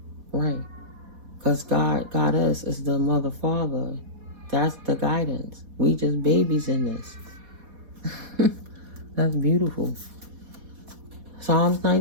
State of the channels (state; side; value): late; left; 4.1 ms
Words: right? Because God got us as the mother, father. That's the guidance. We just babies in this. That's beautiful. Psalms